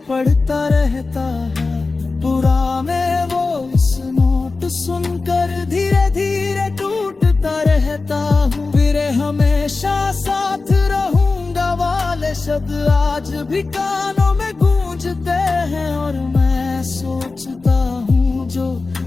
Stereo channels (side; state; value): right; quieter; 3.8 dB